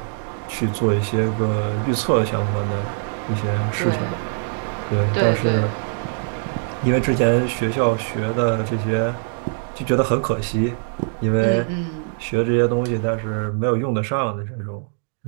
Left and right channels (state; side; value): silent; left; digital silence